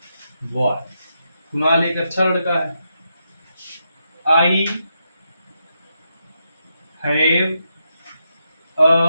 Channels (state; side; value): inverted; both; correlation -0.83